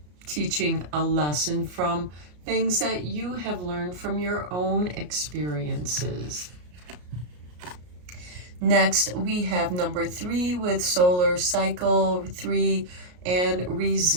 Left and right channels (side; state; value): left; late; 33 ms